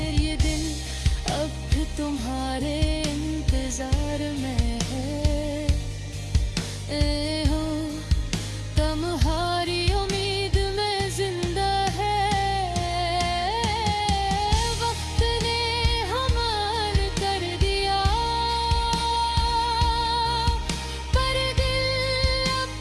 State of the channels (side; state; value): both; identical; correlation 1.00